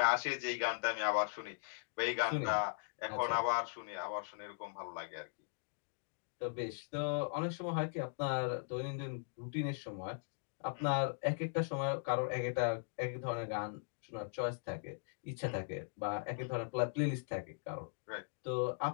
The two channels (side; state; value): right; silent; digital silence